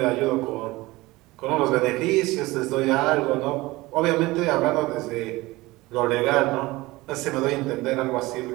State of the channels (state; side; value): quieter; left; 20.4 dB